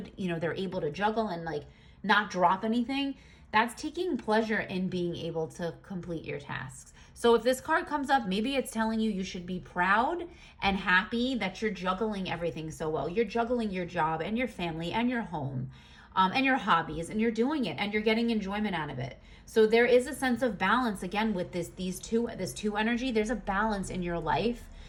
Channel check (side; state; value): both; identical; correlation 1.00